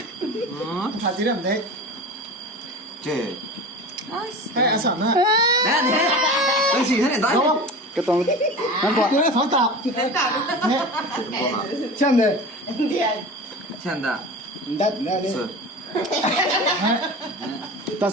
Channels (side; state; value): both; normal; correlation 0.32